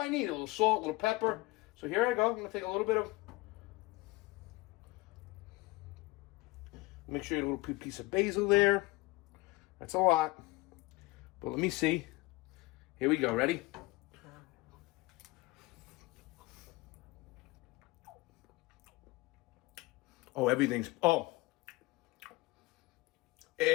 need. A little salt, a little pepper. So here I go. I'm going to take a little bit of... Make sure you get a little piece of basil there. That's a lot. But let me see. Here we go. Ready? Oh, everything's... Oh.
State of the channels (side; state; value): right; quieter; 22.0 dB